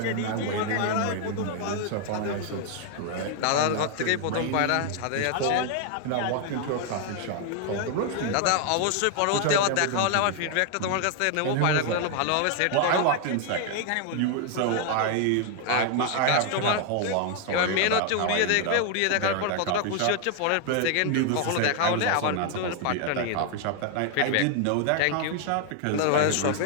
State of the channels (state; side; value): different; both; correlation 0.00